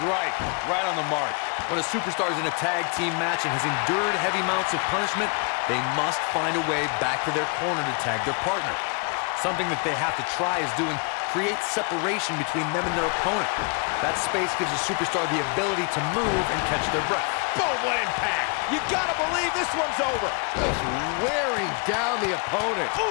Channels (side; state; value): right; quieter; 34.9 dB